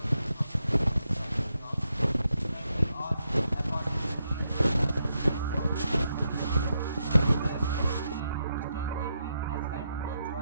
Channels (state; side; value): inverted; both; correlation -0.82